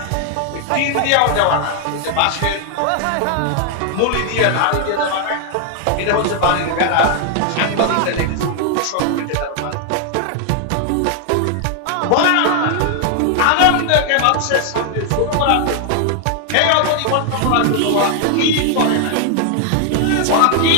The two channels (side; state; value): both; different; correlation 0.00